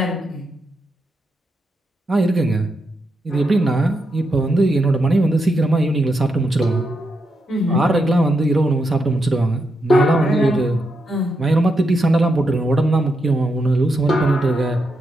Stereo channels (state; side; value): normal; both; correlation 0.83